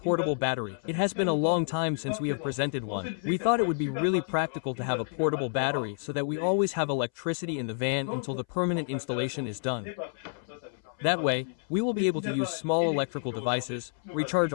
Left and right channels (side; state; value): right; silent; 58 dB below the other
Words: battery. It has been a long time since we have presented one. We thought it would be really practical to have a portable battery so that we always have electricity in the van until the permanent installation is done. That way, we will be able to use small electrical devices, recharge